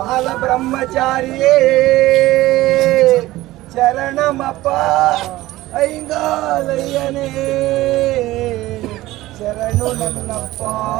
ಬ್ರಹ್ಮಚಾರಿಯೇ ಶರಣಮಪ್ಪ ಐಂಗಾಲಯ್ಯನೇ ಶರಣು ನನ್ನಪ್ಪ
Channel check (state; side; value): quieter; left; 17.2 dB